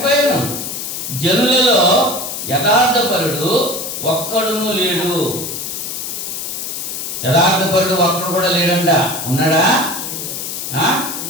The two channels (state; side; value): noise; left; hiss, 5 dB below the sound